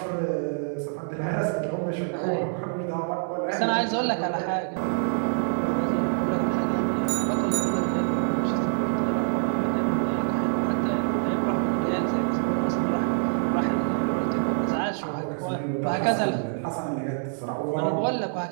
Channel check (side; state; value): left; silent; digital silence